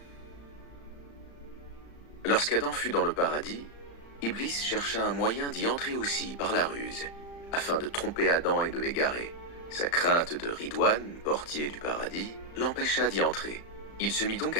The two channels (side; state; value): right; late; 35 ms